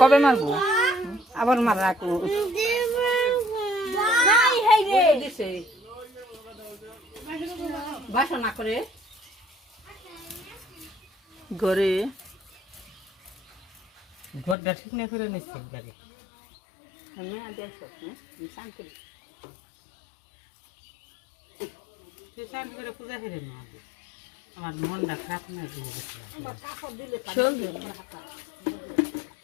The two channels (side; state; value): right; drops out; at 14.6 s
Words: মারবো আবার মার রাখো দিছে বাসনা করে ঘরে ঘরটা ঠিক না করে নিচ্ছে বাড়ি হ্যাঁ দেখো শান্ত করে সে শান্ত করে পূজা করে না আমার মনটা খারাপ না দিয়ে আমার কাপড় দিলে চলবে